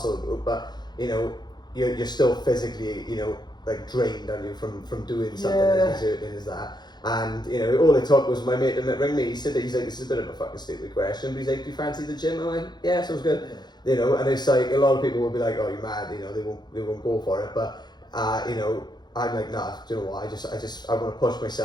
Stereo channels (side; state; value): right; late; 0.21 ms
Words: group, but you know, you're still physically, you know, like drained, aren't you, from doing something as exerting as that. And you know, all it took was my mate to ring me. He's like, this is a bit of a fucking stupid question, but he's like, do you fancy the gym? I went, yeah, sounds good. You know, and it's like, a lot of people will be like, oh, you're mad, you know, they won't go for it. But you know, I'm like, nah, do you know what? I want to push